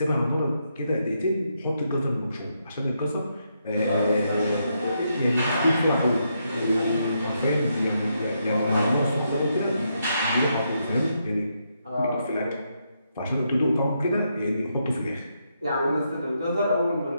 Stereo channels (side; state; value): both; inverted; correlation -0.80